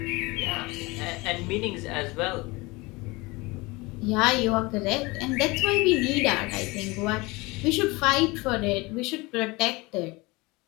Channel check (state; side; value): quieter; right; 23.9 dB